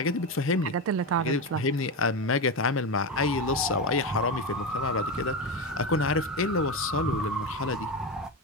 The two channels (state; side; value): normal; both; correlation 0.16